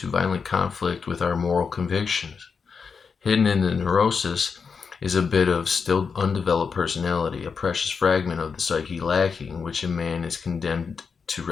violent conflict with our moral convictions. Hidden in the neurosis is a bit of still undeveloped personality, a precious fragment of the psyche lacking, which in man is condemned to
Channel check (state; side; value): quieter; right; 5.6 dB